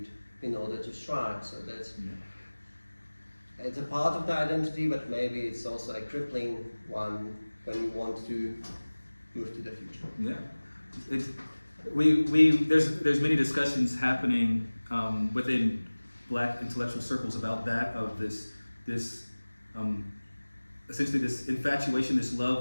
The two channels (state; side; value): inverted; both; correlation -1.00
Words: in order to strive. So that's it's a part of the identity, but maybe it's also a crippling one when you want to move to the future. Yeah. There's many discussions happening within Black intellectual circles about that, of this essentially this infatuation, this